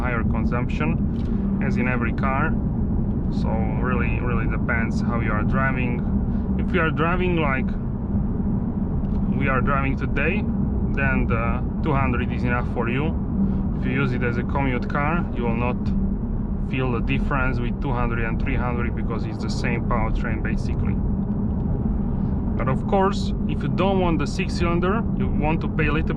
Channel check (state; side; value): identical; both; correlation 1.00